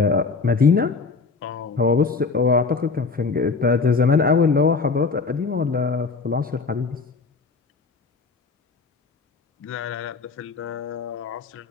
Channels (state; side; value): quieter; right; 4.5 dB